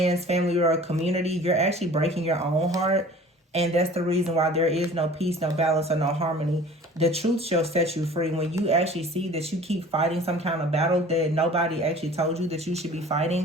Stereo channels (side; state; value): both; normal; correlation 0.46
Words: family, or a community. You're actually breaking your own heart. And that's the reason why there is no peace, no balance, or no harmony. The truth shall set you free. When you actually see that you keep fighting some kind of battle that nobody actually told you that you should be